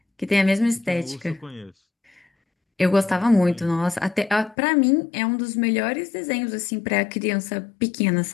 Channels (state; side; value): drops out; right; at 4.5 s